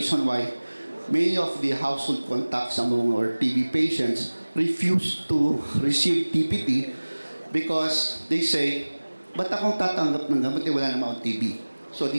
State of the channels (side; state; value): both; inverted; correlation -1.00